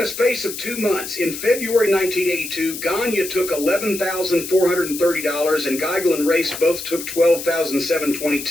space of 2 months, in February 1982, Gagne took $11,430, and Geigel and Race both took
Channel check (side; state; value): left; noise; hiss, 9 dB below the sound